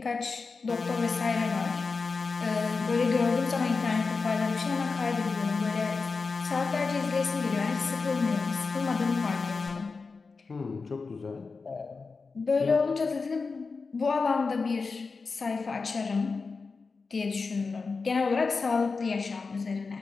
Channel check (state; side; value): quieter; right; 4.4 dB